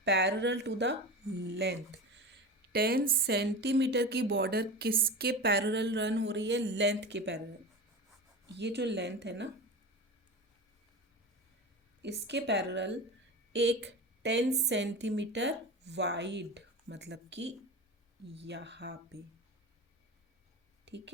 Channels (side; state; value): both; normal; correlation 0.28